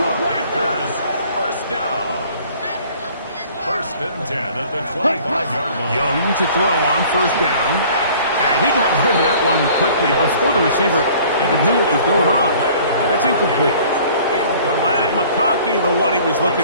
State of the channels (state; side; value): inverted; both; correlation -0.51